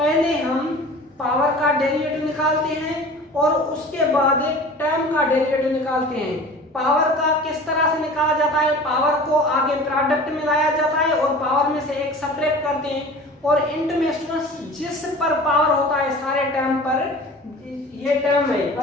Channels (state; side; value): normal; both; correlation 0.40